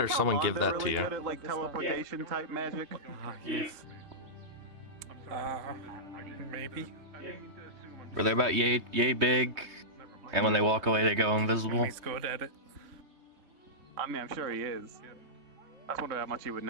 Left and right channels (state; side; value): late; left; 3.2 ms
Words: or someone give that to Really you? good at, like, teleportation type magic. Yes. Maybe. Were they about yay big? And when they walk away, they go invisible? He's good at it. I mean, I'm sure he is. I just wonder how much he would